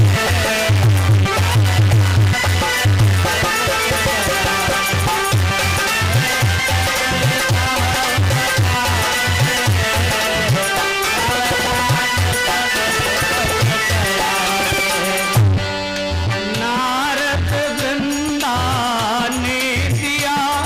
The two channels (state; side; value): identical; both; correlation 1.00